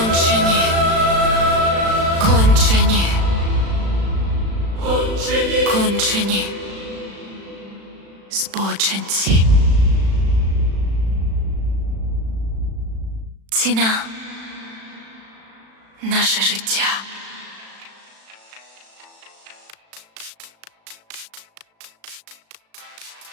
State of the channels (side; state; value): left; late; 36 ms